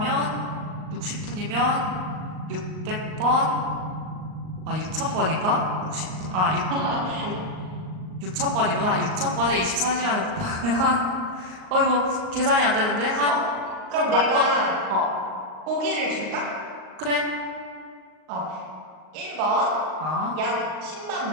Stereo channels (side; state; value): left; late; 38 ms